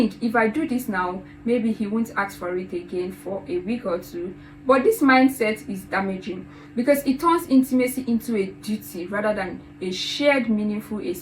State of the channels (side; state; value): both; identical; correlation 1.00